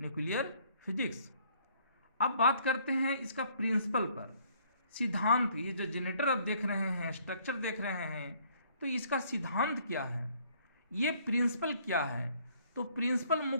nuclear physics. अब बात करते हैं इसका प्रिंसिपल पर, सिद्धांत। ये जो जनरेटर आप देख रहे हैं, स्ट्रक्चर देख रहे हैं, तो इसका सिद्धांत क्या है, ये प्रिंसिपल क्या है? तो प्रिंसिपल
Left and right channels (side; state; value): both; inverted; correlation -0.62